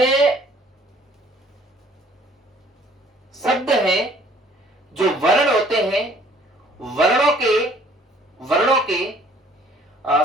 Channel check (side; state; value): both; normal; correlation 0.57